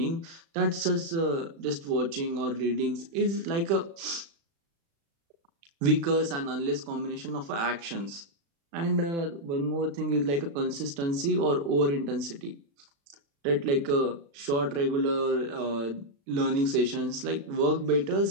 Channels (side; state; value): left; late; 36 ms